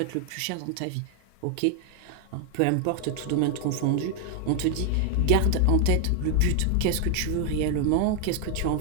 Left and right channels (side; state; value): both; different; correlation 0.00